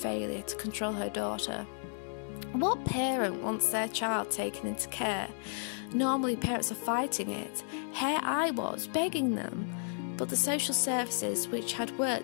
to control her daughter. What parent wants their child taken into care? Normally parents are fighting it. Here I was, begging them. But the social services, which had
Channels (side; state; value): right; silent; digital silence